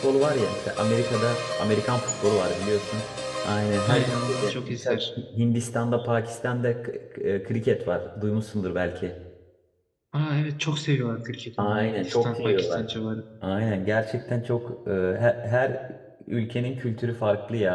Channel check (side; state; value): both; identical; correlation 1.00